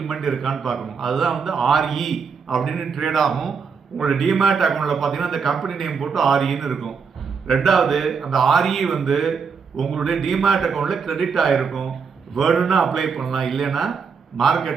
இருக்கான்னு பார்க்கணும். அதுதான் ஆர்இ அப்படின்னு ட்ரேட் ஆகும். உங்களோட டிமேட் அக்கௌண்ட்டில் பார்த்தீங்கன்னா அந்த கம்பெனி நேம் போட்டு ஆர்இன்னு இருக்கும். ரெண்டாவது, அந்த ஆர்இ உங்களுடைய டிமேட் அக்கௌண்ட்டில் கிரெடிட் ஆகிருக்கும். வேணும்னா அப்ளை பண்ணலாம், இல்லைன்னா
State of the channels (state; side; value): quieter; left; 5.8 dB